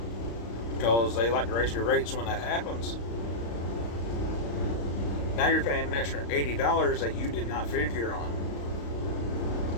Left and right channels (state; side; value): late; right; 35 ms